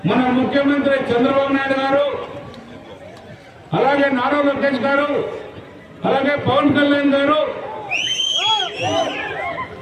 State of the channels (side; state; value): both; identical; correlation 1.00